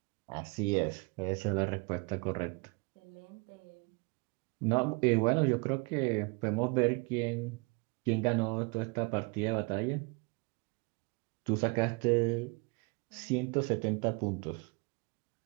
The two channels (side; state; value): left; quieter; 30.7 dB